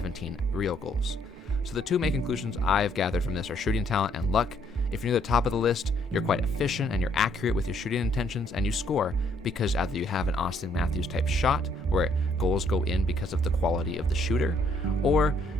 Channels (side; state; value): both; normal; correlation 0.68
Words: real goals. So the two main conclusions I've gathered from this are shooting talent and luck, If you're near the top of the list, you're quite efficient and you're accurate with your shooting intentions, and you score because either you have an Austin Matthews type shot where goals go in because of the quality of the shooter, or